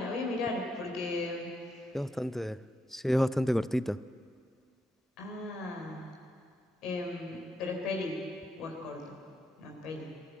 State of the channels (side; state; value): both; normal; correlation 0.81